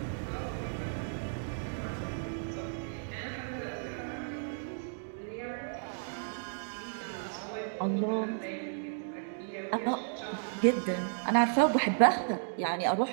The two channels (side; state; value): left; silent; digital silence